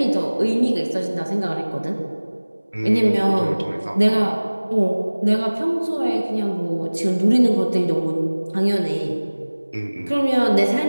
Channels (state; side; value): inverted; both; correlation -1.00